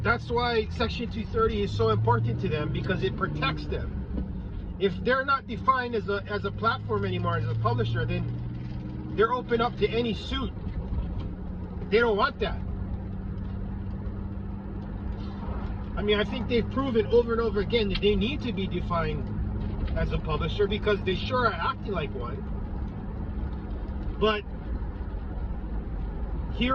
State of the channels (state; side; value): identical; both; correlation 1.00